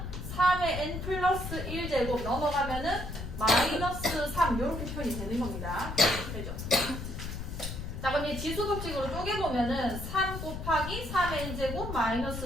3의 n 플러스 1제곱 넘어가면은 마이너스 3 이렇게 표현이 되는 겁니다. 되죠? 자, 그럼 이 지수 법칙으로 쪼개보면은 3 곱하기 3의 n제곱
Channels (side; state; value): left; noise; rumble, 7 dB below the sound